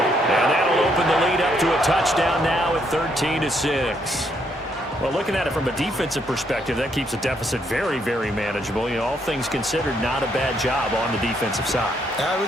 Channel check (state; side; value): normal; both; correlation 0.73